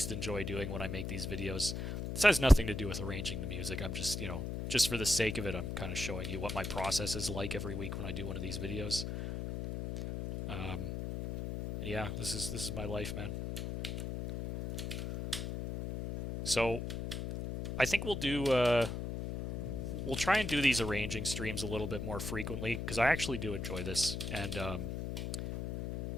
enjoy doing when I make these videos. This has nothing to do with arranging the music. I'm just, just for the sake of it, I'm kind of showing you what my process is like every week when I do one of these videos. Yeah, this is my life, man. So I think we'll try and do these arranging streams a little bit more frequently because I actually do enjoy this, and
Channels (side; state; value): left; noise; hum, 4 dB below the sound